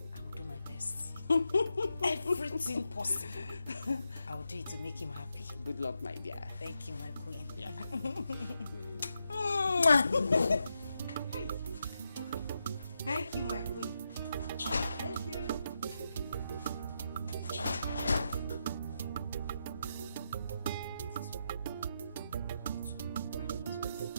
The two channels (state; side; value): inverted; both; correlation -0.84